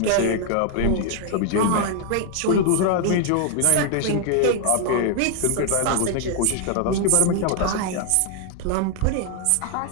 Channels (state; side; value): different; both; correlation 0.00